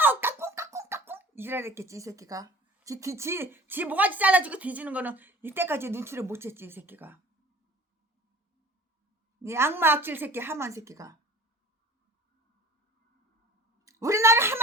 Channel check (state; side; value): normal; both; correlation 0.44